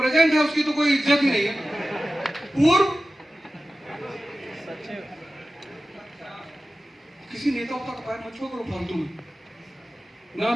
है उसकी तो कोई इज्जत ही नहीं है। पूर्व किसी नेता का पैर मत छुओ करो फालतू में, ना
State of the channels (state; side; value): normal; both; correlation 0.95